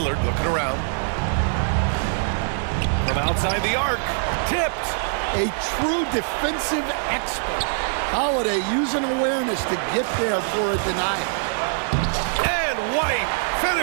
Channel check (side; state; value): left; silent; digital silence